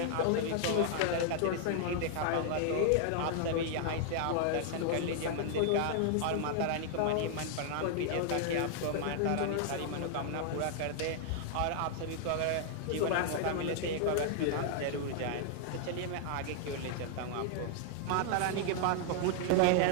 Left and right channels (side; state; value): both; different; correlation 0.00